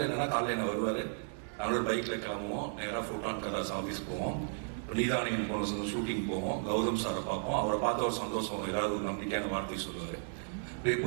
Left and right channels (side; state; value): left; silent; digital silence